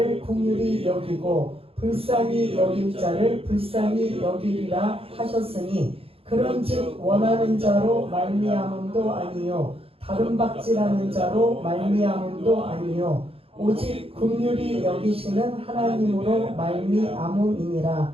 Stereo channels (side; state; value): left; late; 0.27 ms